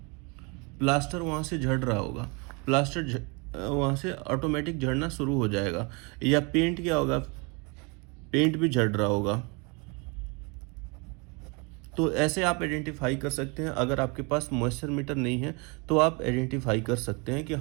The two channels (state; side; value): quieter; left; 30.6 dB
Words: प्लास्टर वहाँ से झड़ रहा होगा, प्लास्टर वहाँ से ऑटोमेटिक झड़ना शुरू हो जाएगा। या पेंट क्या होगा, पेंट भी झड़ रहा होगा। तो ऐसे आप आइडेंटिफाई कर सकते हैं। अगर आपके पास मॉइस्चर मीटर नहीं है तो आप आइडेंटिफाई कर सकते हैं कि